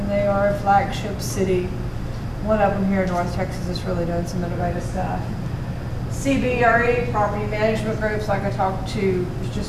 they are a flagship city. One of them here in North Texas is really doing some innovative stuff. CBRE, property management groups, like I talked to, is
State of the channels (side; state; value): both; identical; correlation 1.00